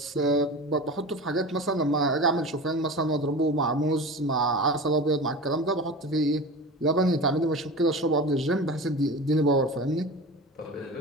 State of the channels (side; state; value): both; normal; correlation 0.31